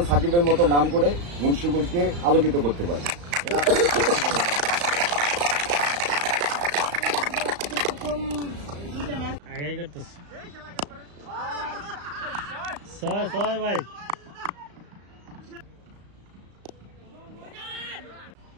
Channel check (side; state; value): left; late; 35 ms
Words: সাকিবের মতো নাম করে মুন্সিগঞ্জকে আলোকিত করতে পারে। আগে করতেছে ছয় ভাই